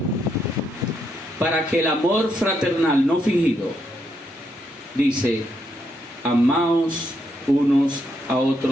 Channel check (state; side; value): normal; both; correlation 0.78